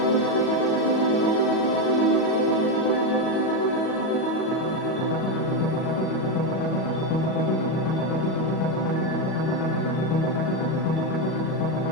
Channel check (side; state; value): right; late; 38 ms